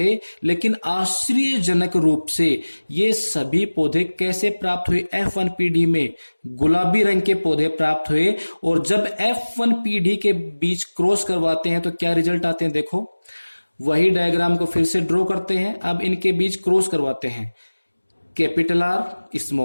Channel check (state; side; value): inverted; both; correlation -1.00